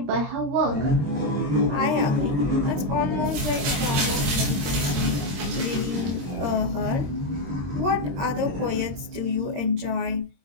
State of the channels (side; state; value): left; late; 22 ms